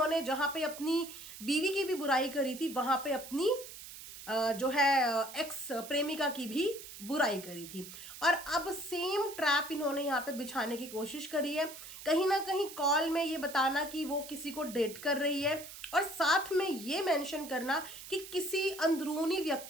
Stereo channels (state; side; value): noise; right; hiss, 13 dB below the sound